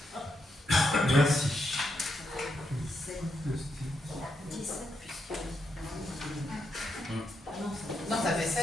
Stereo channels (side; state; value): both; normal; correlation 0.81